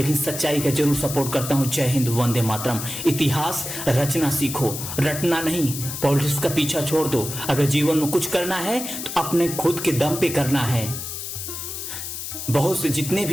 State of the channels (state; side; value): noise; left; hiss, 7 dB below the sound